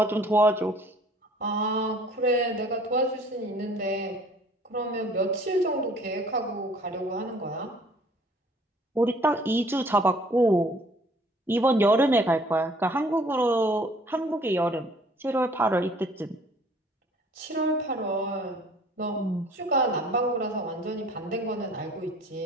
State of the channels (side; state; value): both; normal; correlation 0.54